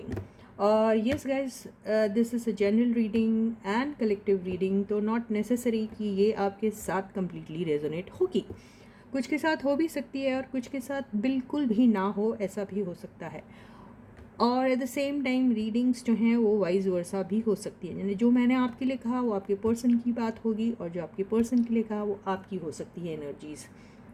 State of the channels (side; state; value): both; identical; correlation 1.00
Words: Yes guys, this is a general reading and collective reading, तो not necessary कि ये आपके साथ completely resonate होगी। कुछ के साथ हो भी सकती है और कुछ के साथ बिल्कुल भी ना हो, ऐसा भी हो सकता है। और at the same time readings जो हैं वो वाइज वर्सा भी हो सकती है, यानी जो मैंने आपके लिए कहा वो आपके पर्सन की बात होगी, और जो आपके पर्सन के लिए कहा वो आपकी हो सकती है एनर्जीज़।